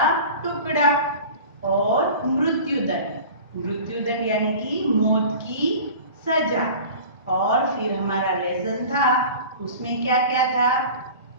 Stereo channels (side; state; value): both; inverted; correlation -0.39